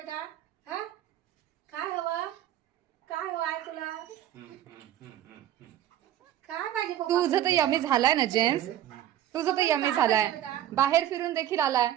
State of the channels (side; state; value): left; quieter; 12.1 dB